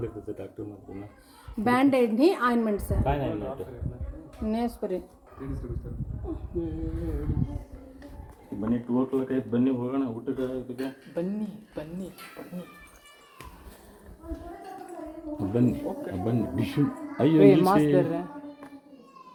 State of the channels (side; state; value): both; identical; correlation 1.00